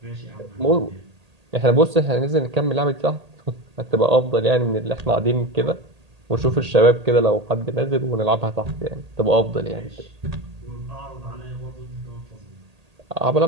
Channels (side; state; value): left; late; 1.8 ms